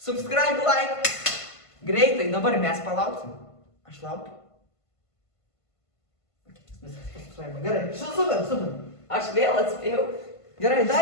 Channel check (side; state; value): right; late; 1.5 ms